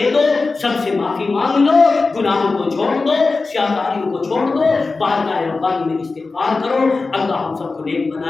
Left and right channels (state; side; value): quieter; right; 3.9 dB